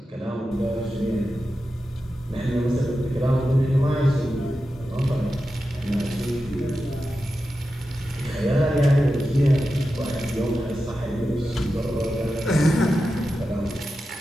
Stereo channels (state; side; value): normal; both; correlation 0.91